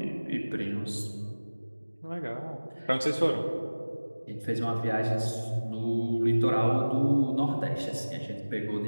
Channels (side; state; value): both; inverted; correlation -1.00